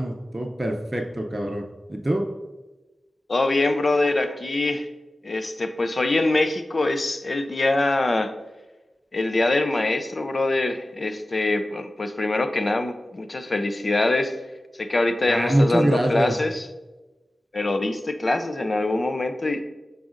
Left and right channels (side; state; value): both; normal; correlation 0.95